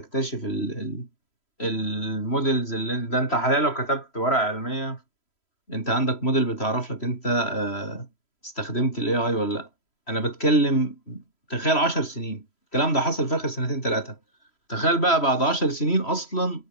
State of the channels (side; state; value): right; late; 3.1 ms